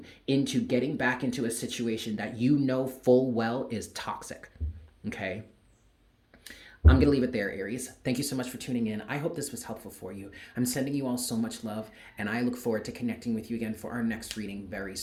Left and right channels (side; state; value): both; identical; correlation 1.00